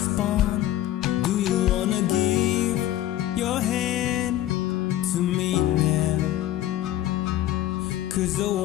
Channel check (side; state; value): right; quieter; 13.4 dB